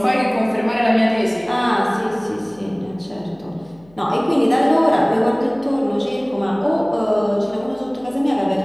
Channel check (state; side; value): noise; left; hum, 28 dB below the sound